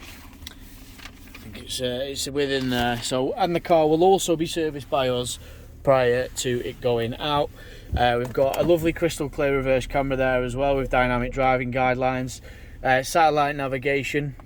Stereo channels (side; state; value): both; identical; correlation 1.00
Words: I think it's within there. So, and the car will also be serviced by us prior to it going out. We've got a lovely crystal clear reverse camera there as well with dynamic driving guidelines, satellite navigation,